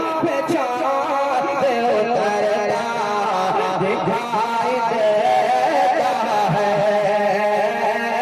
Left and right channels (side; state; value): both; identical; correlation 1.00